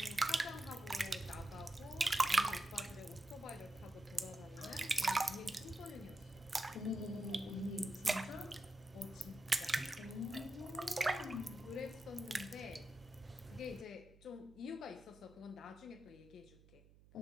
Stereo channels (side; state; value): right; noise; hum, 24 dB below the sound